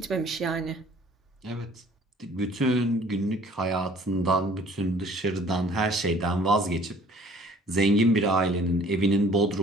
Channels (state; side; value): normal; both; correlation 0.53